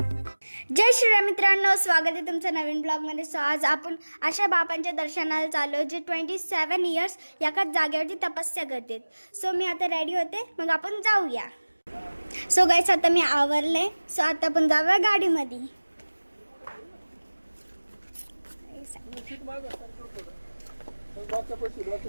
जय श्रीराम मित्रांनो, स्वागत आहे तुमचं नवीन ब्लॉगमध्ये. सो आज आपण अशा बाबांच्या दर्शनाला चाललो जे 27 इयर्स एकाच जागेवरती तपस्या करतात. सो मी आता रेडी होते, मग आपण जाऊया. सो गाईस आता मी आवरले. सो आता आपण जाऊया गाडीमध्ये.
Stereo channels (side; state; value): both; inverted; correlation -1.00